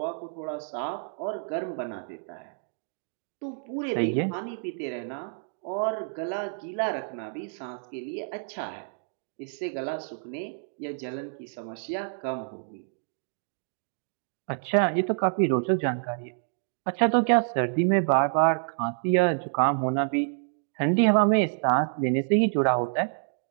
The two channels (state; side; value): silent; left; digital silence